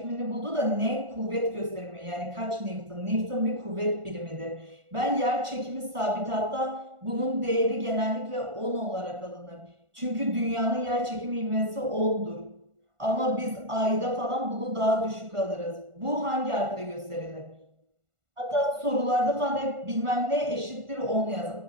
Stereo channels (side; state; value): left; late; 1.5 ms